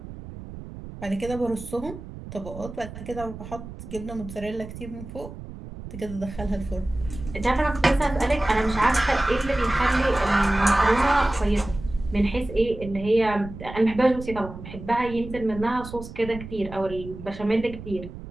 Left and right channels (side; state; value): right; noise; rumble, 12 dB below the sound